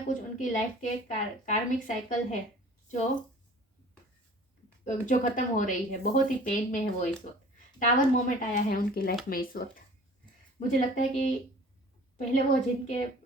कुछ उनकी लाइफ के कार्मिक साइकिल है जो खत्म हो रही है। बहुत ही पेन में है वो इस वक्त। टावर मोमेंट आया है उनकी लाइफ में इस वक्त। मुझे लगता है कि पहले वो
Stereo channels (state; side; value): normal; both; correlation 0.47